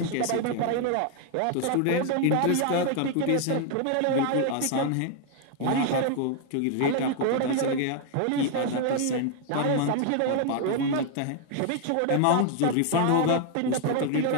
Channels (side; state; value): both; different; correlation 0.00